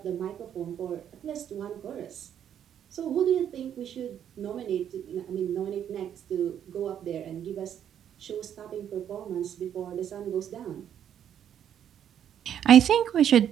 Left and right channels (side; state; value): left; quieter; 9.5 dB